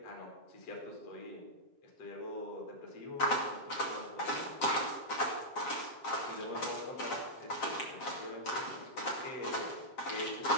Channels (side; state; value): right; late; 7.4 ms